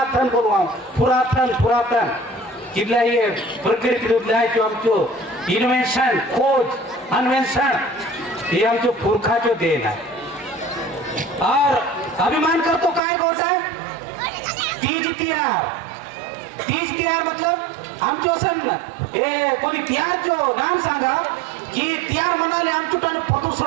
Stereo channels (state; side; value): drops out; left; at 13.0 s